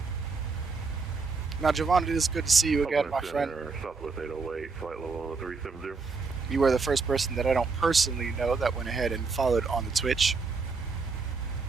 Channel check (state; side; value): quieter; left; 4.5 dB